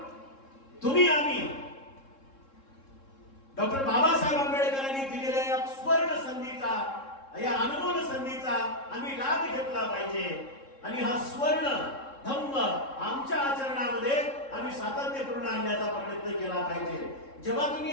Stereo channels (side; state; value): right; late; 3.7 ms